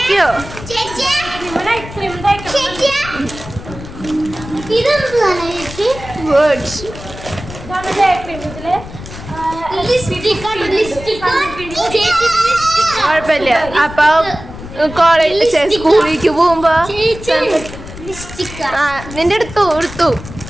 നൈറ്റ് ക്രീം തേക്കണം. ഇതെന്താണ് ചേച്ചി? വേർഡ്സ്. ഇതാണ് ഡേ ക്രീം. ഇതില് കുഴപ്പമില്ല. അപ്പൊ കോളേജ് സ്കൂളിലേക്ക് പോകുമ്പോ നിന്റെ എടുത്തു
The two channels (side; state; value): left; noise; rumble, 13 dB below the sound